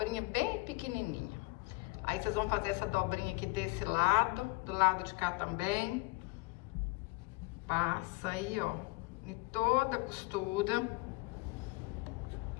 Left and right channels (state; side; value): quieter; right; 24.5 dB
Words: bem pequenininha. Aí, vocês vão fazer essa dobrinha aqui desse lado, do lado de cá também. Passa aí, ó, em toda a costura,